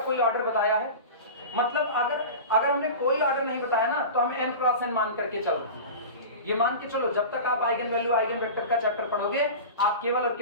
कोई ऑर्डर बताया है? मतलब अगर हमने कोई ऑर्डर नहीं बताया ना तो हम n क्रॉस n मान करके चलो। ये मान के चलो जब तक आप आइगन वैल्यू आइगन वेक्टर का चैप्टर पढ़ोगे आप केवल और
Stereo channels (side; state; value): both; inverted; correlation -0.31